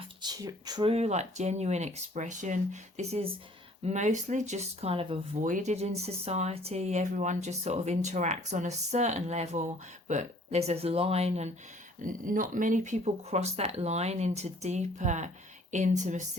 true, genuine expression. This is mostly just kind of avoided in society. Everyone just sort of interacts on a certain level, but there's a line, and not many people cross that line into deeper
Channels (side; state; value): both; normal; correlation 0.56